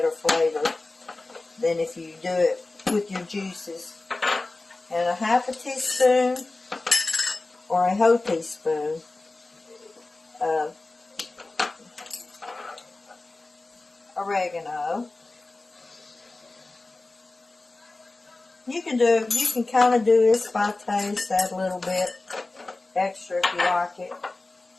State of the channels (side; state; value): right; quieter; 3.2 dB